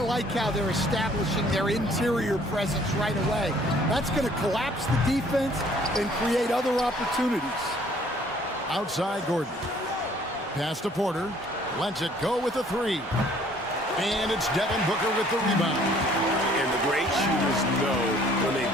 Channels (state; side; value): normal; both; correlation 0.58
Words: how they're establishing their interior presence right away. That's going to collapse the defense and create other opportunities. Outside Gordon. Pass to Porter. Lets it go with a 3. And it's Devin Booker with the rebound. And the great shooters know when